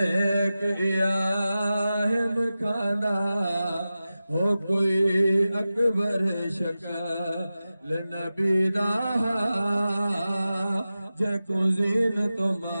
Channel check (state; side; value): inverted; both; correlation -0.94